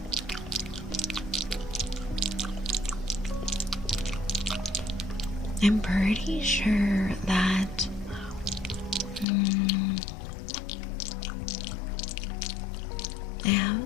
I'm pretty sure that I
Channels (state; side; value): drops out; right; at 9.2 s